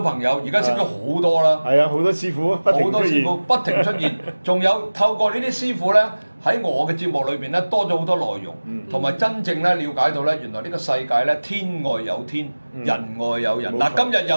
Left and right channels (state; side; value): inverted; both; correlation -1.00